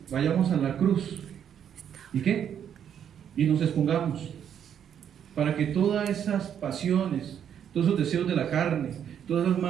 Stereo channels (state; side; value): quieter; left; 8.9 dB